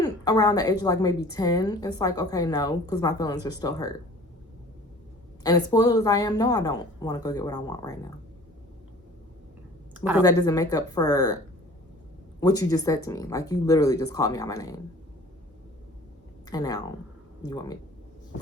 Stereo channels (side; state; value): both; normal; correlation 0.47